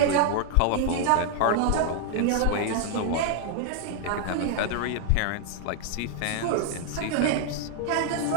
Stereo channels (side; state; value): both; different; correlation 0.00